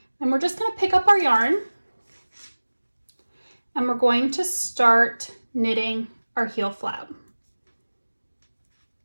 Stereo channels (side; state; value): both; inverted; correlation -1.00